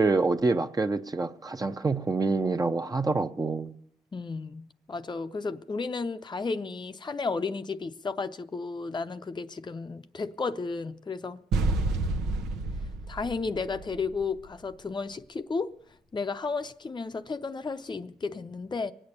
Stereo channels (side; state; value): both; normal; correlation 0.76